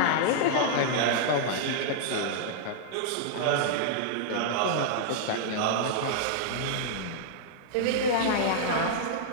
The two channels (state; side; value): different; both; correlation -0.01